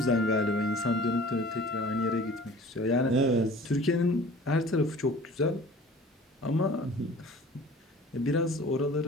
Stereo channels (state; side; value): normal; both; correlation 0.45